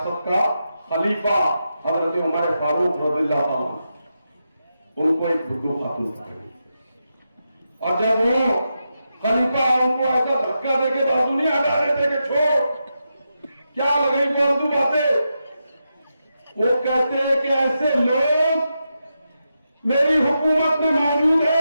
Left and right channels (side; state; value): both; inverted; correlation -0.87